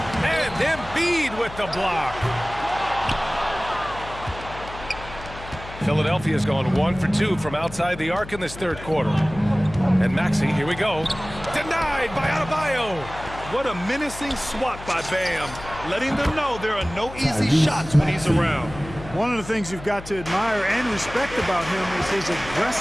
And Embiid with the block. Philadelphia's gone 1 for 2 from outside the arc in this third quarter. And Maxey, here we go. Denied by Adebayo. What a menacing swat by Bam, letting them know there are no easy shots when he's around. One of the things you've got to admire and respect about him is his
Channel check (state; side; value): noise; left; hum, 14 dB below the sound